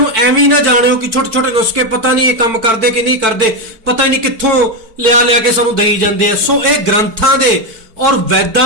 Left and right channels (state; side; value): late; left; 4.5 ms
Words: ਐਵੇਂ ਨਾ ਜਾਣਿਓ ਕਿ ਛੋਟੇ ਛੋਟੇ ਨੁਸਖੇ ਪਤਾ ਨਹੀਂ ਇਹ ਕੰਮ ਕਰਦੇ ਕਿ ਨਹੀਂ ਕਰਦੇ, ਪਤਾ ਹੀ ਨਹੀਂ ਕਿੱਥੋਂ ਲਿਆ ਕੇ ਸਾਨੂੰ ਦੇਈ ਜਾਂਦੇ ਆ। ਸੋ ਇਹ ਗ੍ਰੰਥਾਂ ਦੇ ਔਰ